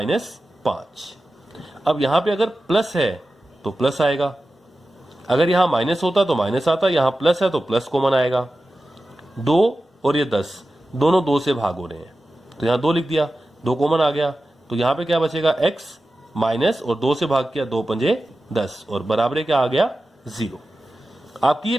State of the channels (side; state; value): both; normal; correlation 0.94